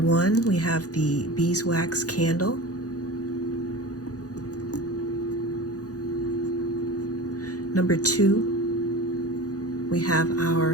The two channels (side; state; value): right; late; 0.67 ms